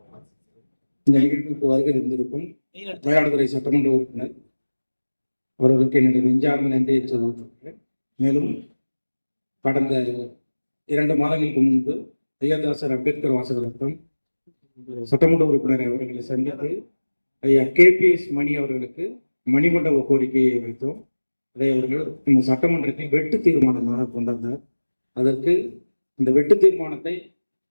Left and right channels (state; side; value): inverted; both; correlation -1.00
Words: இந்த நிகழ்வுக்கு வருகை இருந்திருக்கும் மயிலாடுதுறை சட்டமன்ற உறுப்பினர் அவர்களுக்கு என்னுடைய நெஞ்சார்ந்த நன்றியை சொல்லியிருக்கிறேன். மேலும் கடந்த 2 மாதங்களுக்கு முன்பு ஐயர்தாசர் அம்பேத்கர் வாசகரத்தம் சட்டமன்ற உறுப்பினர் அவர்களை சந்தித்து ஐயா KPS மணி அவர்களுக்கு மணிமண்டப கோரிக்கையை வைத்தோம். அதை அவர்கள் இந்த சட்டமன்றத்தில் வெட்டு தீர்மானமாக கொண்டாந்தார். அதற்கு இந்த வெட்டு தீர்மானத்தை